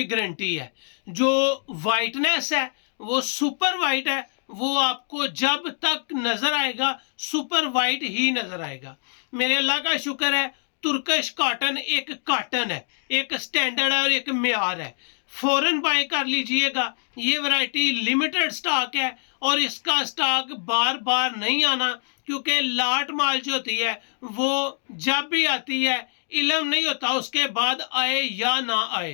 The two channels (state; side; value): silent; right; 62 dB below the other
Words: गारंटी है। जो वाइटनेस है वो सुपर वाइट है, वो आपको जब तक नजर आएगा सुपर वाइट ही नजर आएगा। मेरे अल्लाह का शुक्र है, तुर्कश कॉटन एक कॉटन है, एक स्टैंडर्ड है और एक मेयार है। फौरन बाय कर लीजिएगा। ये वैरायटी लिमिटेड स्टॉक है और इसका स्टॉक बार बार नहीं आना, क्योंकि लाट माल जो होती है वो जब भी आती है इल्म नहीं होता उसके बाद आए या ना